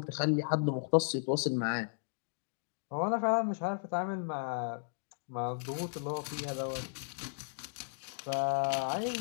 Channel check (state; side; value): silent; right; digital silence